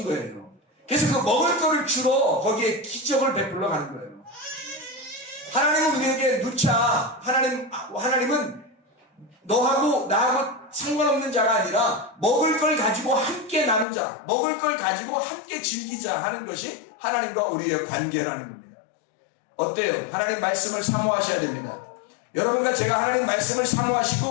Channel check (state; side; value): drops out; right; at 13.9 s